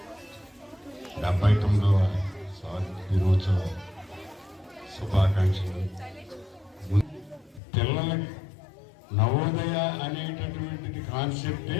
79వ స్వాతంత్ర దినోత్సవ శుభాకాంక్షలు. పిల్లలకి నవోదయ అనేటటువంటిది కాన్సెప్టే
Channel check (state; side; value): drops out; right; at 7.6 s